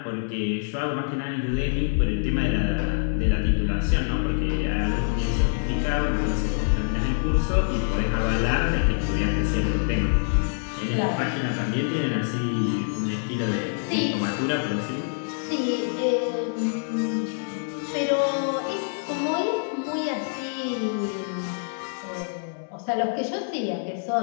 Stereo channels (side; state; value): right; silent; digital silence